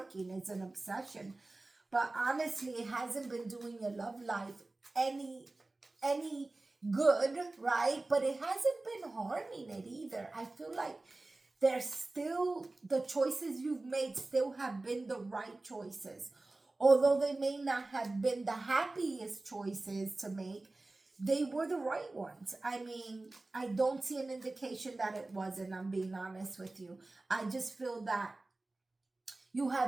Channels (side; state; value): left; quieter; 3.1 dB